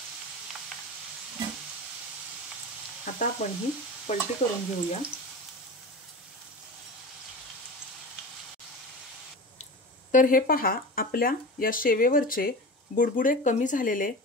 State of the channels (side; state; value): both; normal; correlation 0.30